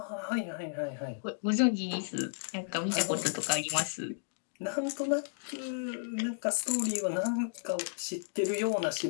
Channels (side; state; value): right; silent; digital silence